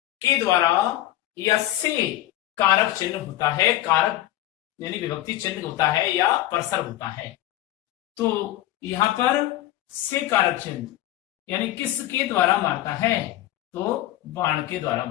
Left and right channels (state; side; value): quieter; right; 14.7 dB